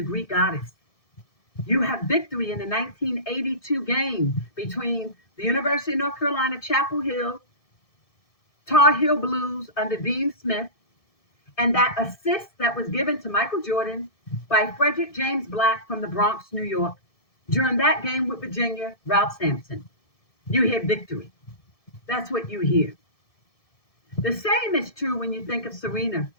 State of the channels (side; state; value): right; late; 1.7 ms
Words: Greek goddess. You have Victory in the 1982 game between the University of North Carolina, Chapel Hill, Tar Heel Blues under Dean Smith, and that assist that was given to Michael Jordan by Frederick James Black from the Bronx, New York, during that game with Virginia, Ralph Sampson. You hear Victory. That's what you hear. The same is true when you think of Serena